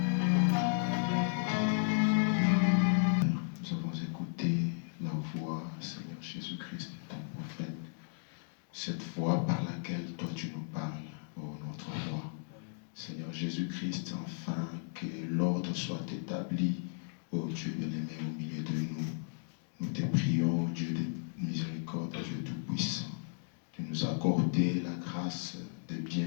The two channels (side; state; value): right; silent; digital silence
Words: Cette voix par laquelle toi tu nous parles, ô notre roi. Seigneur Jésus-Christ, enfin que l'ordre soit établi, ô Dieu bien-aimé, au milieu de nous. Nous te prions, ô Dieu de miséricorde, Dieu tout-puissant, de nous accorder la grâce de